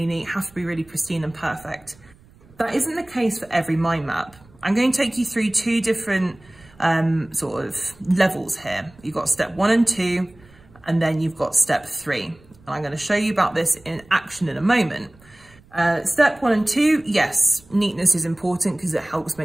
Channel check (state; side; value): noise; right; rumble, 27 dB below the sound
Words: neat, have to be really pristine and perfect. That isn't the case for every mind map. I'm going to take you through two different sort of levels here. You've got step 1 and 2, and then you've got step 3. And I'm going to show you about this in action in a moment. Step 1 and 2, yes, neatness is important because it helps